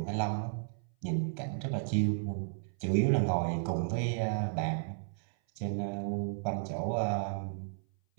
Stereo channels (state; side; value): silent; left; 55 dB below the other